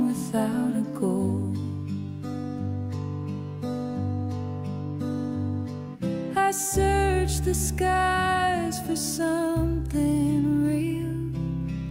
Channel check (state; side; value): identical; both; correlation 1.00